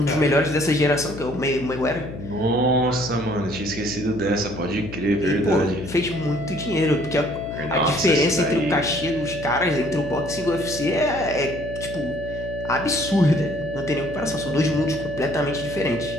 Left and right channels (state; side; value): noise; left; hum, 10 dB below the sound